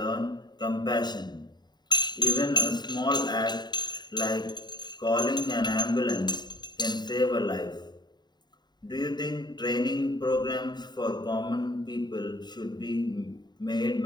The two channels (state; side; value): late; right; 0.21 ms